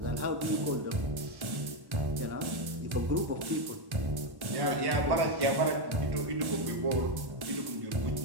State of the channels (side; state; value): left; late; 1.1 ms